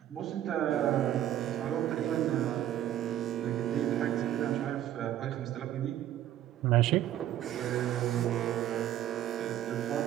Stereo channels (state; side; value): quieter; left; 12.1 dB